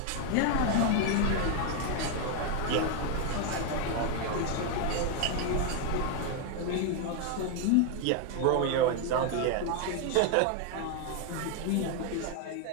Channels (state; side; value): different; both; correlation 0.01